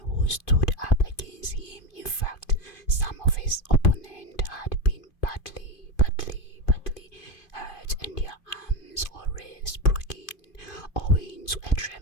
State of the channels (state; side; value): late; right; 2.5 ms